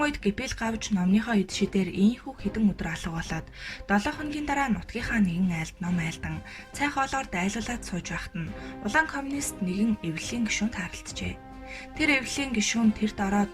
үед гипил гавж номныхоо эд шидээр ийхүү хэдэн өдөр алга болоод 7 хоногийн дараа нутгийнхаа нэгэн айлд ном айлдан цай хоолоор дайлуулад сууж байхад нь улаан коммунист нэгэн эвлэлийн гишүүнд харалджээ. Тэр эвлэлийн гишүүн тэр дараа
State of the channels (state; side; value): identical; both; correlation 1.00